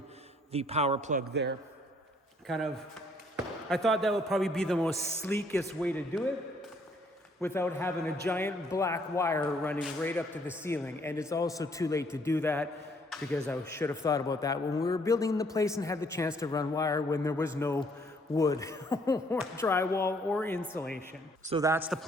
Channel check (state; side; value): normal; both; correlation 0.65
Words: the power plug there. I thought that would probably be the most sleekest way to do it without having a giant black wire running right up to the ceiling. And it's also too late to do that, because I should have thought about that when we were building the place and had the chance to run wire when there was no wood or drywall or insulation. So that's the